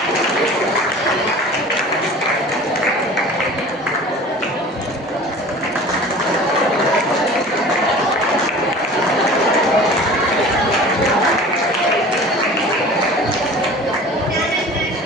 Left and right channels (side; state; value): both; normal; correlation 0.41